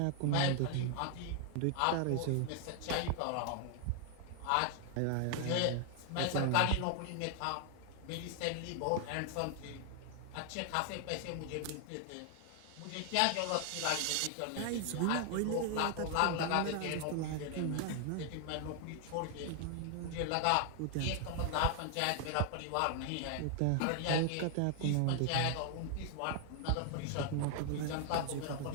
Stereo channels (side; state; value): both; different; correlation 0.00